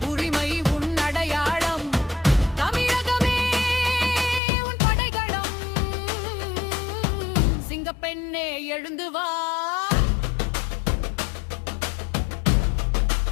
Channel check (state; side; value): drops out; right; at 4.4 s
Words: உரிமை உன் அடையாளம், தமிழகமே உன் படைகளம். சிங்கப்பெண்ணே எழுந்து வா.